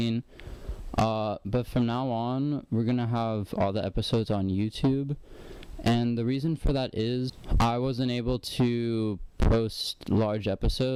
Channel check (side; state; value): both; identical; correlation 1.00